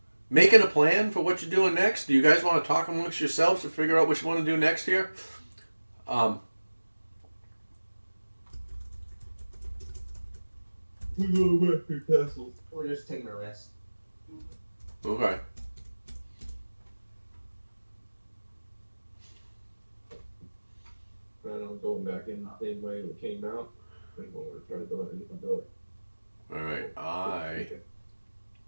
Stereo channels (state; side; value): inverted; both; correlation -1.00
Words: making a plan for what you're doing next? Do you guys want to talk amongst yourselves to figure out what you want to do next here? We go back to castle. We're just taking a rest. Okay. I'm going back in the same way it came out. I think we're going to try to do it, and you can do it. All right. I